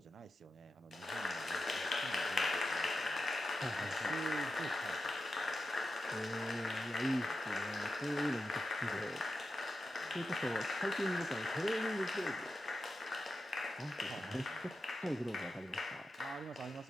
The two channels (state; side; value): normal; both; correlation 0.90